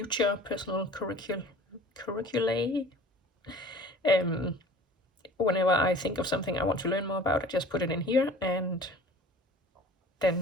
personal curriculae, whenever I think of something I want to learn more about, I just put it in here, and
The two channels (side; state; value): both; normal; correlation 0.45